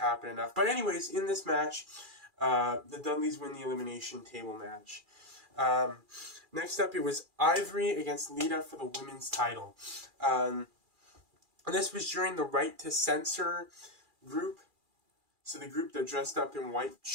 enough. But anyways, in this match, the Dudleys win the elimination table match. Next up, it was Ivory against Lita for the women's title. And this was during the Right to Censor group. So the group that dressed up in white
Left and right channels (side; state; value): left; late; 2.4 ms